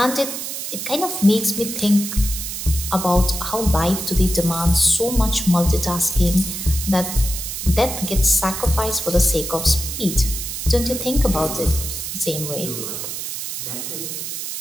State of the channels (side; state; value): right; noise; hiss, 5 dB below the sound